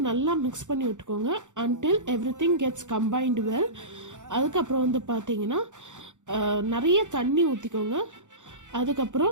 நல்லா மிக்ஸ் பண்ணி விட்டுக்கோங்க until everything gets combined well. அதுக்கப்புறம் வந்து பார்த்தீங்கன்னா நிறைய தண்ணி ஊற்றிக்கோங்க.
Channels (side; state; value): left; late; 0.85 ms